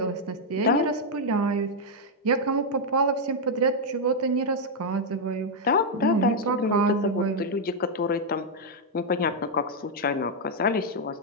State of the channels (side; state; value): both; normal; correlation -0.02